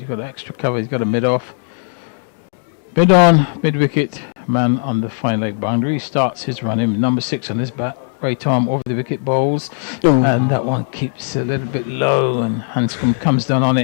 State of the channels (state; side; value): silent; right; digital silence